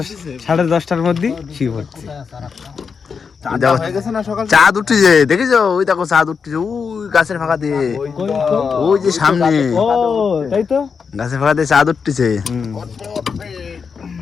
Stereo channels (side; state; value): right; quieter; 5.8 dB